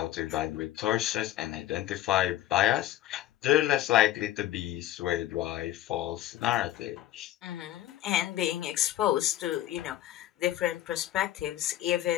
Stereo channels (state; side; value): quieter; right; 13.8 dB